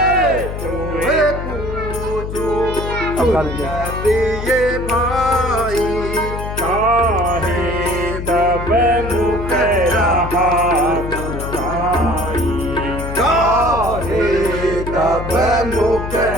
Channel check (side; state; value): left; noise; hum, 6 dB below the sound